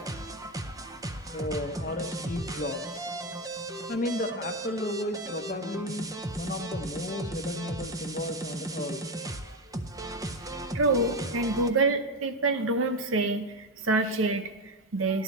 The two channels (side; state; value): both; normal; correlation 0.14